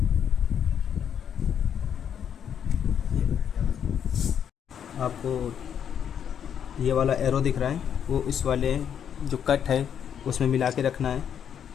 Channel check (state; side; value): quieter; right; 8.6 dB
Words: आपको ये वाला एरो दिख रहा है, वो इस वाले जो कट है उसमें मिला के रखना है,